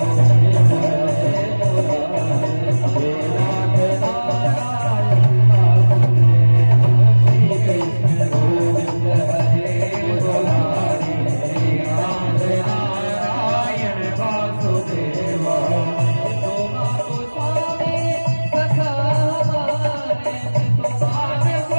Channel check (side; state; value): both; inverted; correlation -1.00